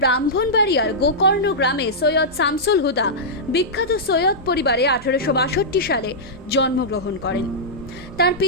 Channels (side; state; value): both; normal; correlation -0.11